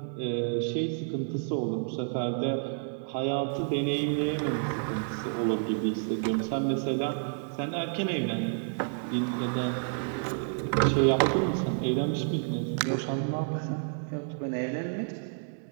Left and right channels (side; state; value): left; silent; digital silence